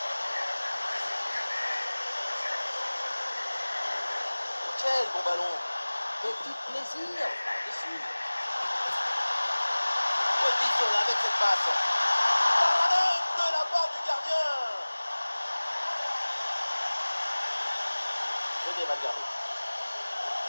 Quel bon ballon. Petit plaisir par-dessus. Bonne vision là avec cette passe. Parade de la part du gardien. Venez Valverde.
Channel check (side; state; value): both; inverted; correlation -1.00